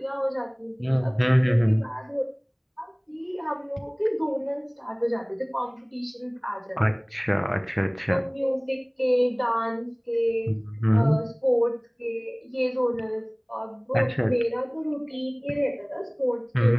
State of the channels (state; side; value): identical; both; correlation 1.00